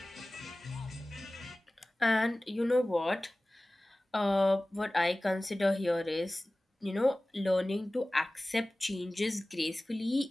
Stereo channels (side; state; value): both; normal; correlation 0.98